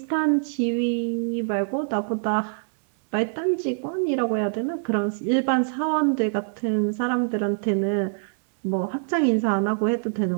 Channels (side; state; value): left; silent; 62 dB below the other